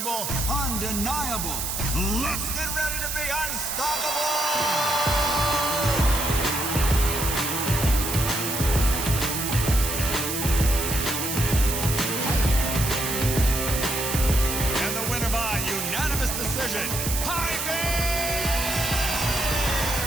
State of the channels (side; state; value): right; noise; hiss, 3 dB below the sound